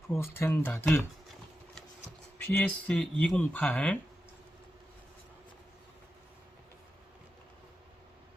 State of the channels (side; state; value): both; normal; correlation 0.90